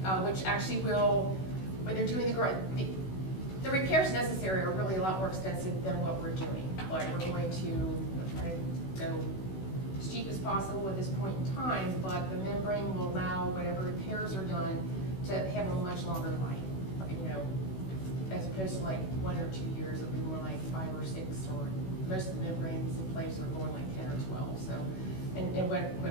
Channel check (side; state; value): right; late; 16 ms